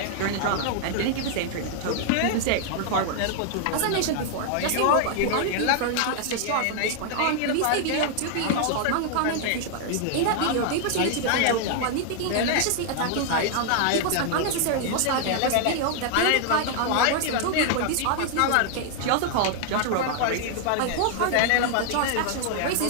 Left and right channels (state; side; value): different; both; correlation 0.00